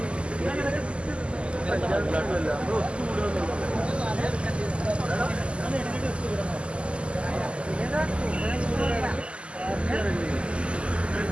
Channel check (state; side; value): late; left; 0.054 ms